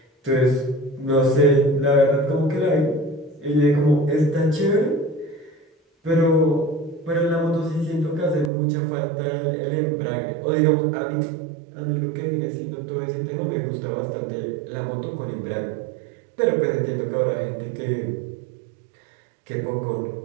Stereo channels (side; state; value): left; drops out; at 8.5 s